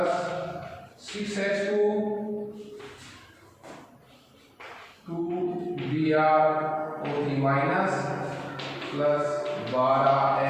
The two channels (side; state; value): both; identical; correlation 1.00